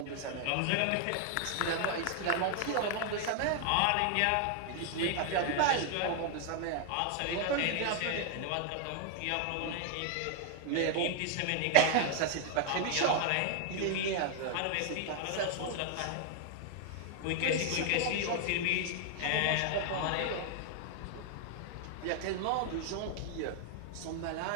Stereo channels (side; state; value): both; different; correlation 0.00